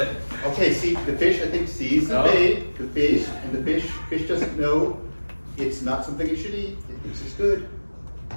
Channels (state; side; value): inverted; both; correlation -1.00